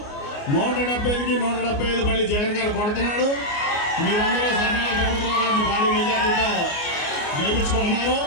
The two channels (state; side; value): late; right; 29 ms